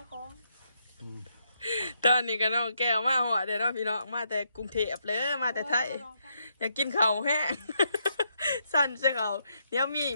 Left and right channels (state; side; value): inverted; both; correlation -0.78